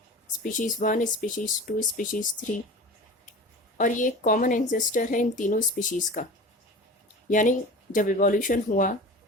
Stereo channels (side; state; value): both; normal; correlation 0.36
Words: स्पीशीज़ 1, स्पीशीज़ 2, स्पीशीज़ 3, और ये कॉमन एंसेस्टर है इन तीनों स्पीशीज़ का। यानी जब इवोल्यूशन हुआ